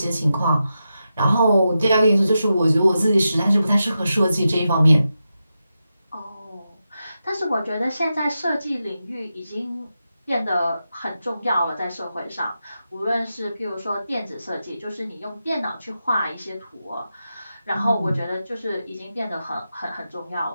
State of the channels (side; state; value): both; inverted; correlation -0.89